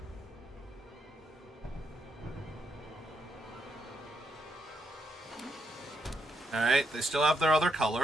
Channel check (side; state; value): both; normal; correlation 0.79